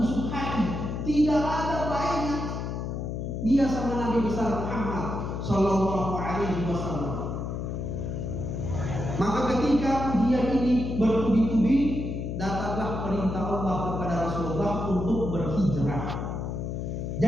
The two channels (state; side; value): noise; left; hum, 4 dB below the sound